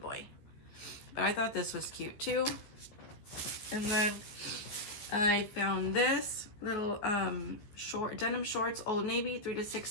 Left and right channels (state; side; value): late; right; 14 ms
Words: boy. But I thought this was cute too. And then I found this little denim shorts, Old Navy, 3 to